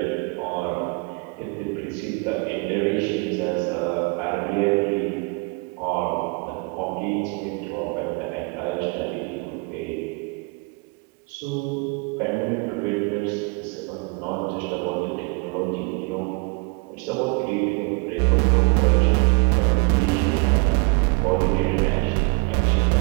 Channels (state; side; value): quieter; left; 31.2 dB